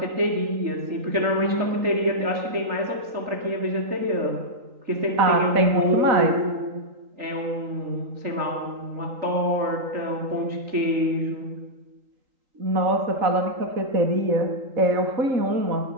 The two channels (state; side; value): late; left; 3.8 ms